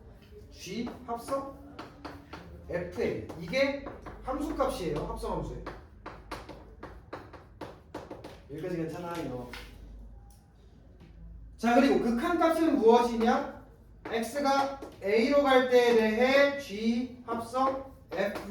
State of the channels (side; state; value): both; identical; correlation 1.00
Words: G 합성 FA 이게 함수값이에요. 합성함수에. 여기까지 괜찮아요. 자, 그리고 극한값은 무엇이냐? x가 a로 갈 때에 대해 g 합성